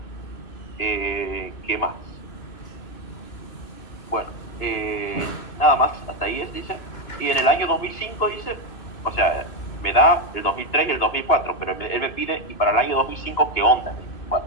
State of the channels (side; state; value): right; late; 2.8 ms